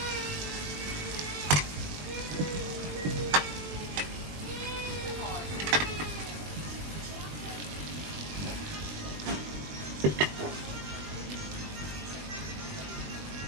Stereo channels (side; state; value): left; late; 20 ms